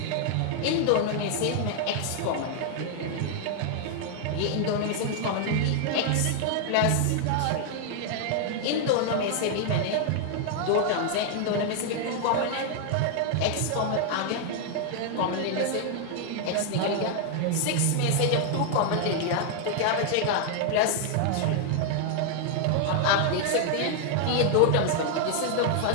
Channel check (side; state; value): both; different; correlation 0.00